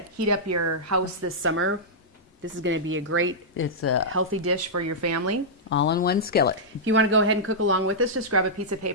heat up your house this summer, this is going to be a great, It's a healthy dish for your family. all-in-one skillet. If you want to go ahead and cook along with us, just grab a piece of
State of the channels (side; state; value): both; normal; correlation -0.10